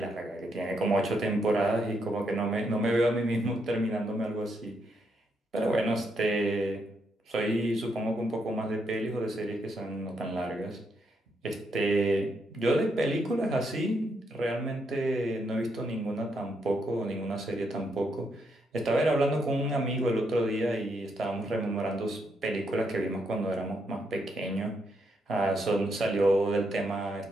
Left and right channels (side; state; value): both; normal; correlation 0.78